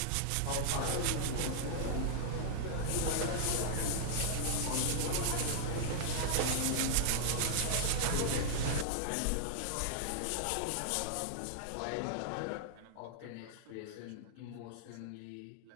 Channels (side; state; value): both; different; correlation -0.01